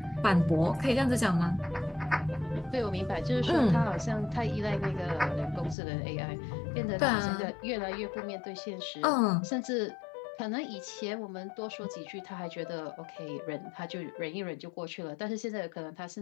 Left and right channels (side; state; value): right; drops out; at 5.8 s